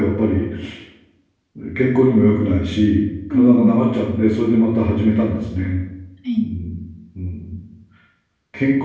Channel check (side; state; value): both; identical; correlation 1.00